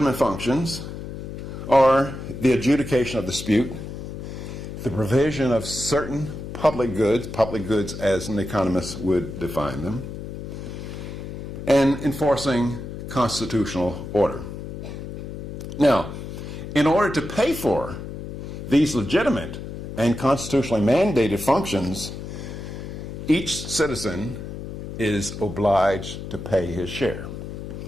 functions are the adjudication of dispute, the provision of certain public goods as an economist would define them, and enforcing constitutional order. Now, in order to pay for these legitimate and constitutionally mandated functions, each citizen is obliged to pay his share.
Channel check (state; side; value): noise; left; hum, 9 dB below the sound